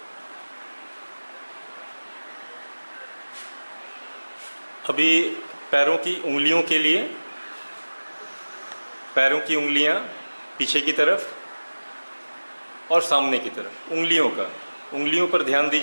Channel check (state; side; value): inverted; both; correlation -1.00